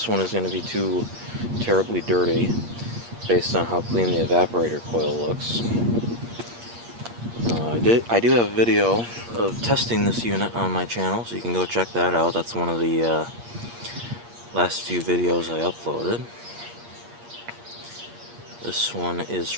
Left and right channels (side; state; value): left; late; 8.5 ms